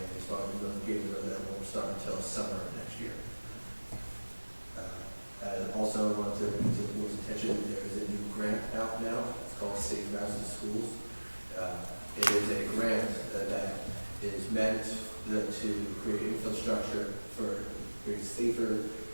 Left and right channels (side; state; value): both; inverted; correlation -1.00